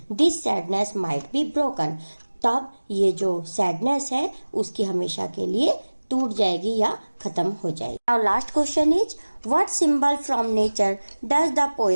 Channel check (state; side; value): inverted; both; correlation -1.00